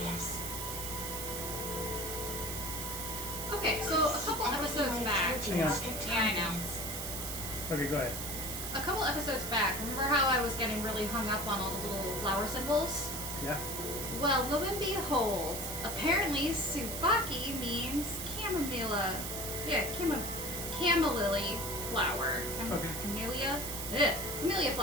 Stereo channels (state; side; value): noise; right; hiss, 5 dB below the sound